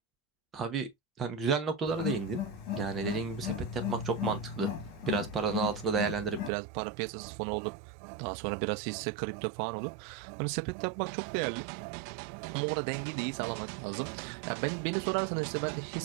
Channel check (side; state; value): left; drops out; at 6.5 s